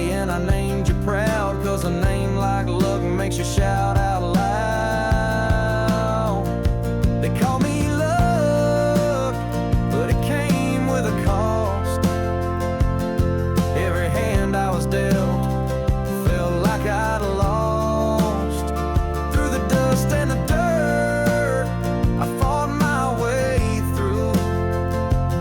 and I named you proud, 'cause a name like luck makes you shout out loud. They call me luck, but it came with a cost. Every hand I was dealt felt like I'd lost.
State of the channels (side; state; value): both; identical; correlation 1.00